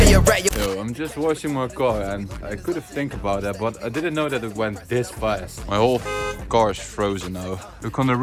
you're right. Yo, I'm just washing my car and I could have think about that, but I didn't know that it went this fast. My whole car is frozen now. Look on the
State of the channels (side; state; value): both; identical; correlation 1.00